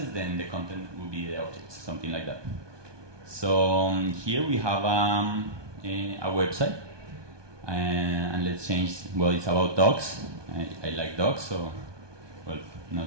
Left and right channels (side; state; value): left; late; 1.2 ms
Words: then the content will be the objects, something like that. So here we have a website, and let's change, well, it's about dogs. I like dogs, so, well,